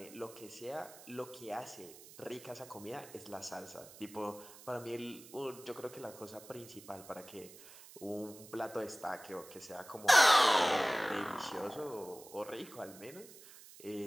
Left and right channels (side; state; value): right; noise; hiss, 18 dB below the sound